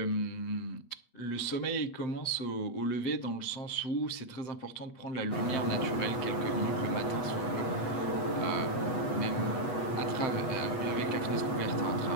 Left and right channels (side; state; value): right; late; 8.2 ms